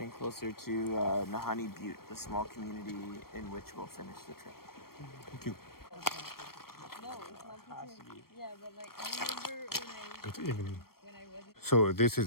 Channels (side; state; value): right; late; 0.94 ms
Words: closer to Nahanni Butte, the small community in which we'll finish the trip. Thank you. No, it's not the same. Yeah, but like I remember Good evening. when I was So this